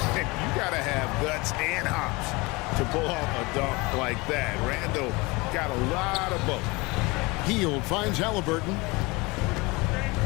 got to have guts and hops to pull off a dunk like that. Randall got a lot of both. Hield finds Halliburton.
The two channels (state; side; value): quieter; right; 24.6 dB